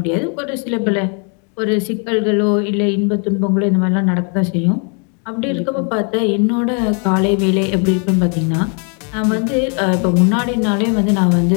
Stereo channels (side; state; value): right; quieter; 39.2 dB